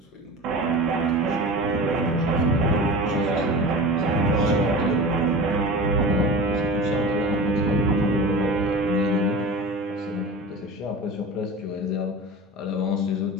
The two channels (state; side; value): normal; both; correlation 0.33